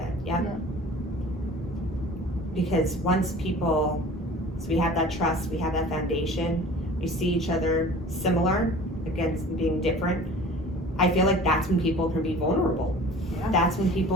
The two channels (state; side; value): normal; both; correlation 0.43